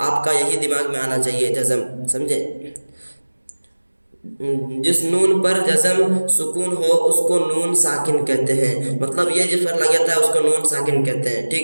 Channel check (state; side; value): inverted; both; correlation -1.00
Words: आपका यही दिमाग में आना चाहिए, जज़म। समझे? जिस नून पर जज़म सुकून हो उसको नून साकिन कहते हैं। मतलब ये जिस पर लग जाता है उसको नून साकिन कहते हैं।